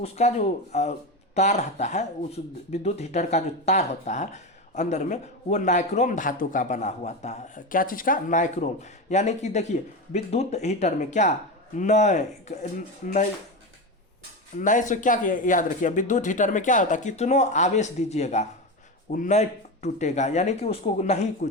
जो तार रहता है, उस विद्युत हीटर का जो तार होता है अंदर में, वो नाइक्रोम धातु का बना हुआ था। क्या चीज़ का, नाइक्रोम। यानी कि देखिए विद्युत हीटर में क्या नए से क्या याद रखिए, विद्युत हीटर में क्या होता है, कितनों आवेश दीजिएगा वो नहीं टूटेगा, यानी कि उसको नहीं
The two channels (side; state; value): both; normal; correlation 0.19